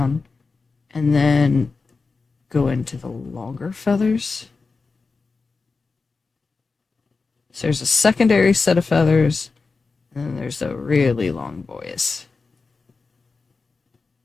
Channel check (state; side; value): quieter; right; 4.3 dB